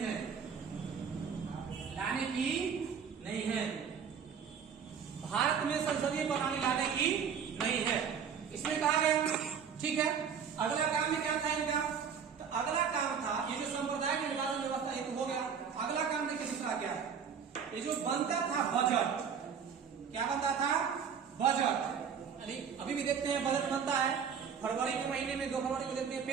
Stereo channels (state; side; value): quieter; left; 7.0 dB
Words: लाने की नहीं है। भारत में संसदीय प्रणाली लाने की नहीं है, इसमें कहा गया। ठीक है, अगला काम में क्या था इनका? तो अगला काम था, ये जो सांप्रदायिक निर्वाचन व्यवस्था ये तो हो गया। अगला काम देखिए दूसरा क्या है? ये जो बनता था बजट, क्या बनता था? बजट। अभी भी देखते हैं बजट बनता है, फरवरी के महीने में 2 फरवरी को देखते हैं